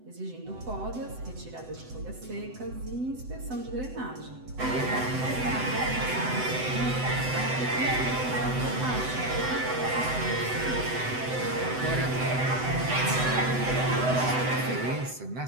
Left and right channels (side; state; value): left; late; 7.9 ms